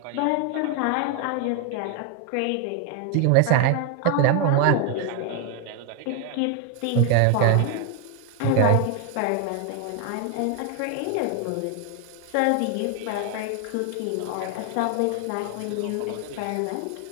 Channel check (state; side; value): different; both; correlation 0.00